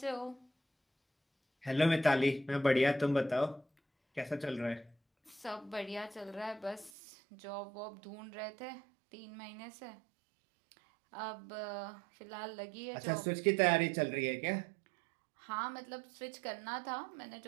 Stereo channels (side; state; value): left; drops out; at 6.9 s